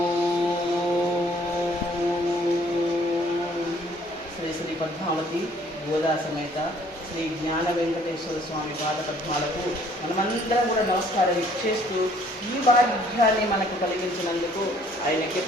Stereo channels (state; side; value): normal; both; correlation 0.60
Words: శ్రీ శ్రీ పద్మావతి గోదా సమేత శ్రీ జ్ఞాన వెంకటేశ్వర స్వామి పాద పద్మాలకు మనమందరం కూడా నమస్కారం చేస్తూ ఈ భాగ్యాన్ని మనకు కలిగించినందుకు ఆయనకి